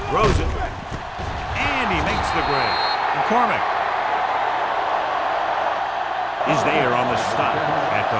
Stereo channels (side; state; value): both; identical; correlation 1.00